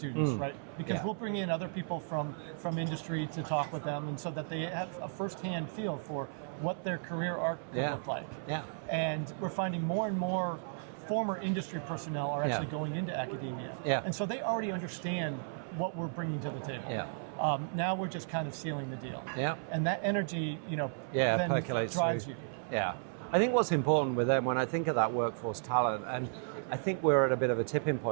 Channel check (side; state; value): left; silent; 55 dB below the other